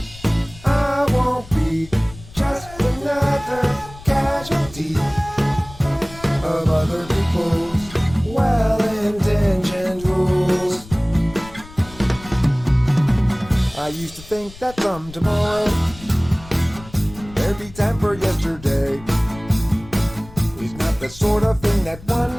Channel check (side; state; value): left; noise; rumble, 18 dB below the sound